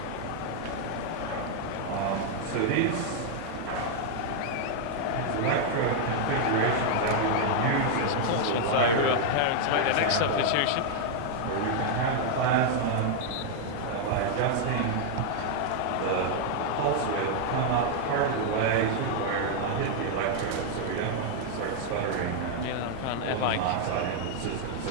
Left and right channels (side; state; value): both; different; correlation 0.00